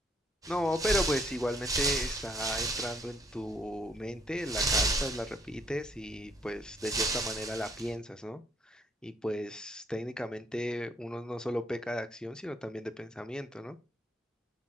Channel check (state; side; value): normal; both; correlation 0.68